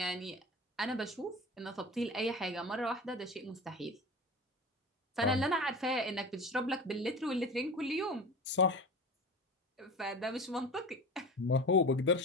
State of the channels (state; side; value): normal; both; correlation 0.33